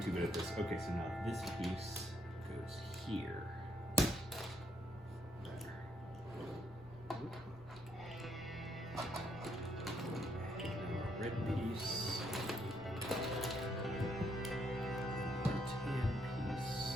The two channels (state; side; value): normal; both; correlation 0.73